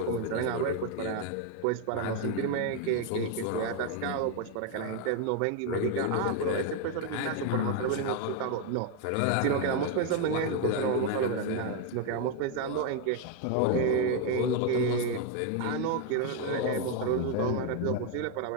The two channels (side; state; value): both; different; correlation 0.01